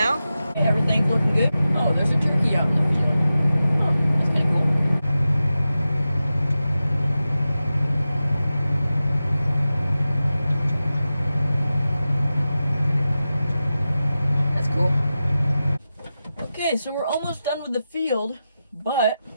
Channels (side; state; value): both; inverted; correlation -0.93